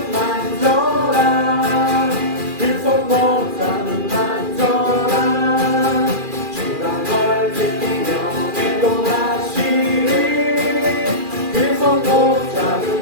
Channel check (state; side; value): late; left; 2.4 ms